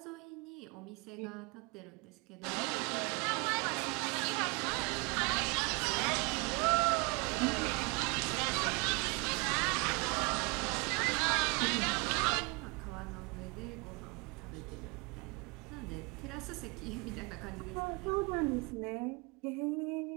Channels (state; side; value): quieter; left; 28.9 dB